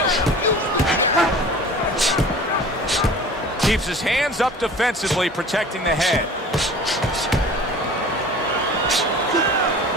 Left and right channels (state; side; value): normal; both; correlation 0.42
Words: Keeps his hands up defensively, protecting the head.